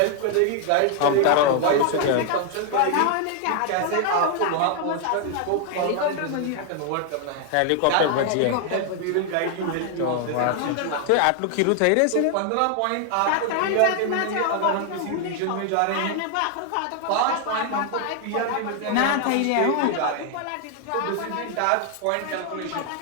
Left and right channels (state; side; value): different; both; correlation 0.00